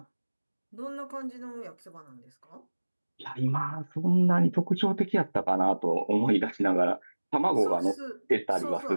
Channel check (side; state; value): both; inverted; correlation -1.00